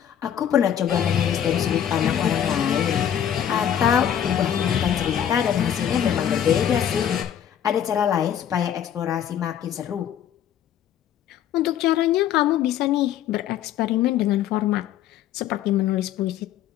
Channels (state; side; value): quieter; right; 9.8 dB